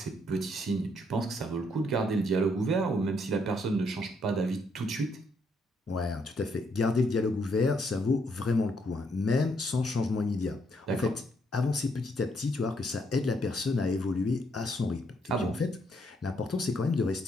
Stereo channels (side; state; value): both; normal; correlation 0.73